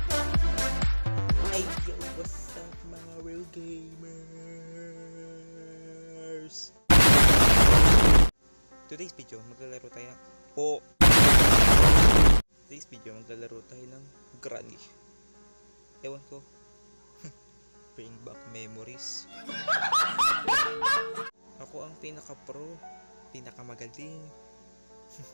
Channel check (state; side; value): inverted; both; correlation -1.00